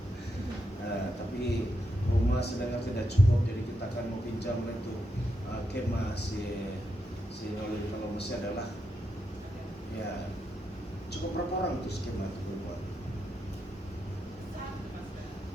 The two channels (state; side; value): normal; both; correlation 0.83